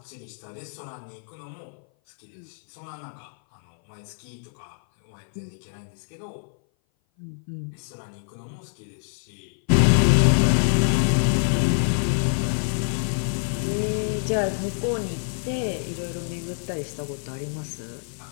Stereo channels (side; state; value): right; silent; 58 dB below the other